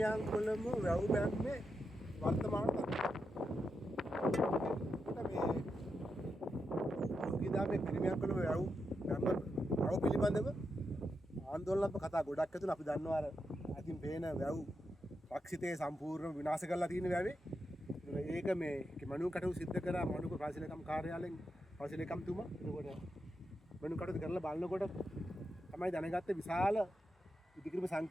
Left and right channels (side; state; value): both; normal; correlation 0.86